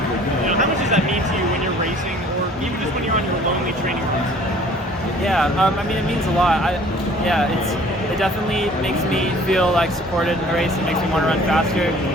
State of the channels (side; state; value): both; normal; correlation 0.52